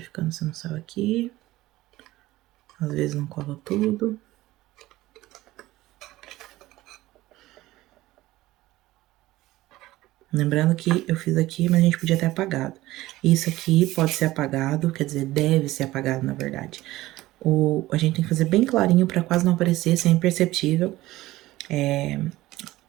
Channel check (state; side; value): quieter; left; 17.1 dB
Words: se não saiu aqui. Às vezes não cola tudo. Lembrando que eu fiz aqui, mas a gente podia ter apagado. Isso aqui pode ser apagado, quer dizer, deve ser apagado, na verdade. A gente tem que fazer bem clarinho pra quase não aparecer, ser imperceptível.